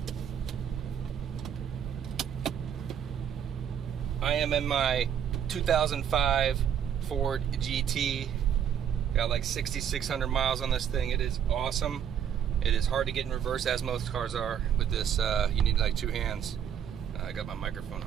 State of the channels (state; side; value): quieter; left; 8.8 dB